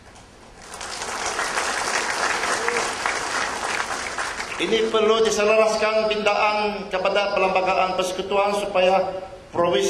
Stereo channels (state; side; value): identical; both; correlation 1.00